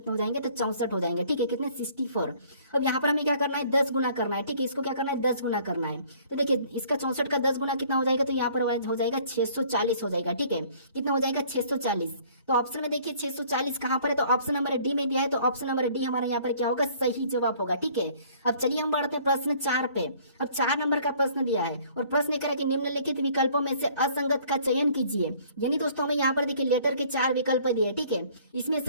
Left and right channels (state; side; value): inverted; both; correlation -0.56